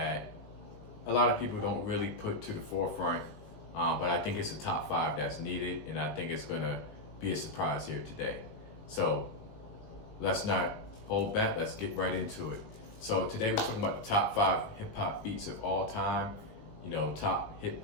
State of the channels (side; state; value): right; late; 19 ms